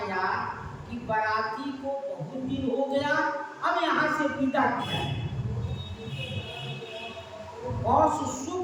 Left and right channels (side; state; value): both; identical; correlation 1.00